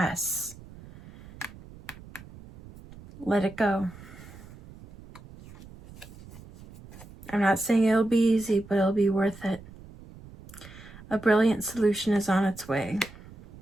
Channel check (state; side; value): noise; right; rumble, 19 dB below the sound